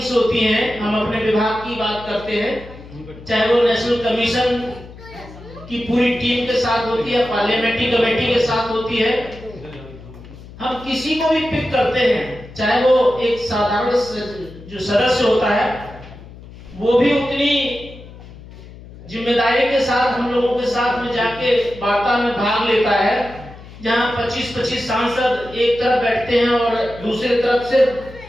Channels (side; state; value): left; noise; hum, 18 dB below the sound